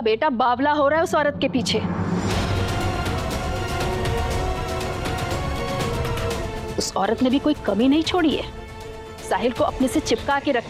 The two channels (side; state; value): both; identical; correlation 1.00